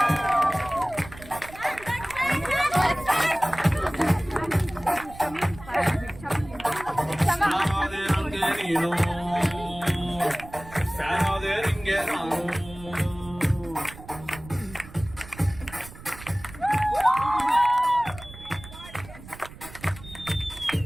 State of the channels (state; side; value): noise; right; rumble, 17 dB below the sound